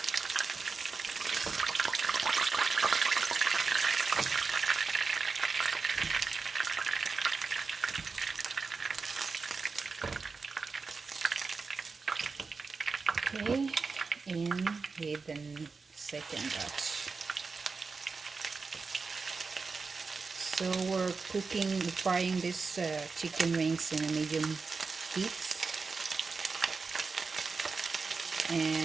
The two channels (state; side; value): quieter; left; 4.6 dB